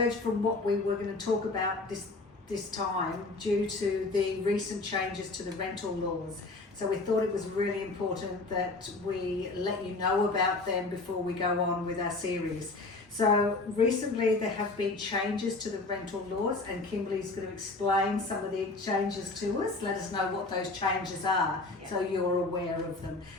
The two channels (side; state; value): right; quieter; 3.3 dB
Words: from what we were going to talk about this time due to the recent changes to the rental laws. So we thought it was really important that we let you know about them before we go on with our series. So recently there have been changes to the rental laws, and Kimberly's going to explain some of the changes to us. Let us know what those changes are, so you're aware of them.